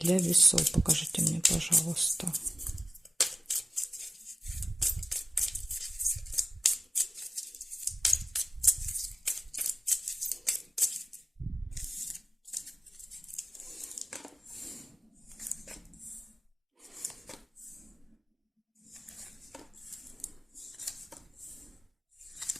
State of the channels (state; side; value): normal; both; correlation 0.95